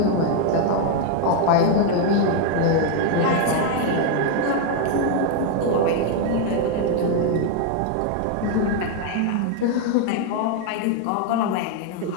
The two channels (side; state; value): both; different; correlation 0.00